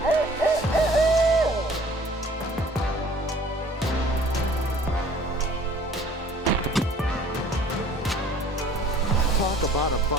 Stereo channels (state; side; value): normal; both; correlation 0.53